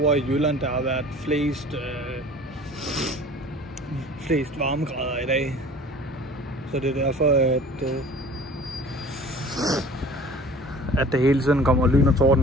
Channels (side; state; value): both; normal; correlation 0.45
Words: i Jylland, der har været flest varmegrader i dag. Så det er derfor, at det hele tiden kommer lyn og